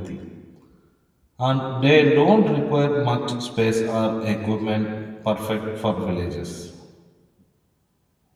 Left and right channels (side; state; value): both; identical; correlation 1.00